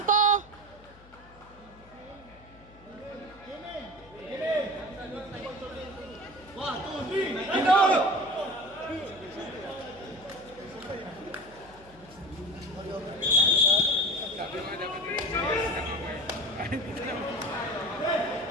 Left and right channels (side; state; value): left; noise; hum, 23 dB below the sound